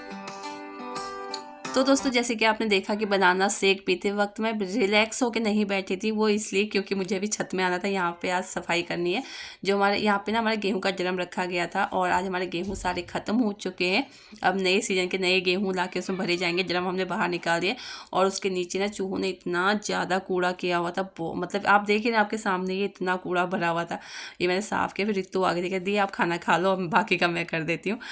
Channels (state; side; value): identical; both; correlation 1.00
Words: तो दोस्तों जैसे कि आपने देखा कि बनाना शेक पीते वक्त मैं रिलैक्स होकर नहीं बैठी थी, वो इसलिए क्योंकि मुझे अभी छत में आना था। यहाँ पे आज सफाई करनी है। जो हमारे यहाँ पे ना हमारे गेहूं का ड्रम रखा गया था और आज हमारे गेहूं सारे ख़त्म हो चुके हैं। अब नए सीजन के नए गेहूं ला के उसमें भरे जाएंगे। ड्रम हमने बाहर निकाल दिया और उसके नीचे ना चूहों ने इतना ज़्यादा कूड़ा किया हुआ था। मतलब आप देखिए ना, आपके सामने ये इतना कूड़ा भरा हुआ था। ये मैंने साफ़ किया। फिर रितु आगे देखा दी आप खाना खा लो, बाकी का मैं कर देती हूँ।